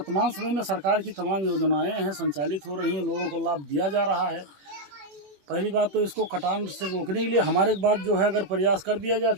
समय में सरकार की तमाम योजनाएं हैं संचालित हो रही हैं, लोगों को लाभ दिया जा रहा है। पहली बात तो इसको कटान से रोकने के लिए हमारे बाद जो है अगर प्रयास कर दिया जाए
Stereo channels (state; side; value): late; left; 21 ms